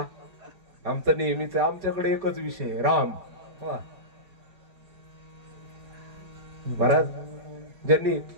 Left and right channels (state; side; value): late; left; 4.8 ms